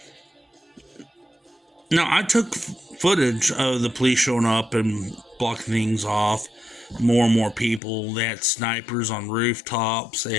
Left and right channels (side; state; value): right; drops out; at 7.8 s